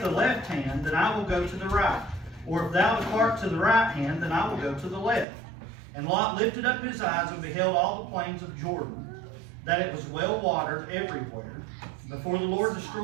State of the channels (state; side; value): drops out; left; at 5.2 s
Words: the left hand, then I will go to the right. Or if thou depart to the right hand, then I will go to the left. And Lot lifted up his eyes and beheld all the plains of Jordan, that it was well watered everywhere, before the Lord